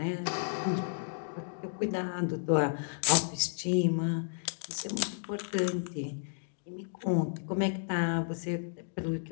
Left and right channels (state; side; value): silent; right; digital silence